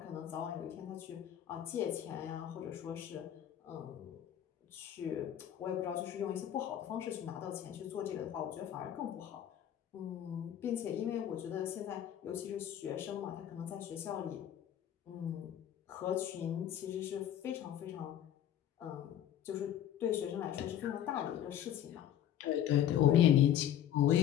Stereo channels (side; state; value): right; quieter; 10.7 dB